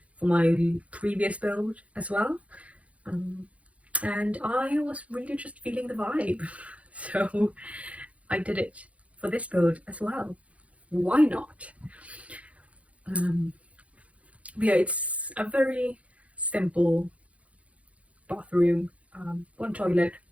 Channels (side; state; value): left; late; 0.065 ms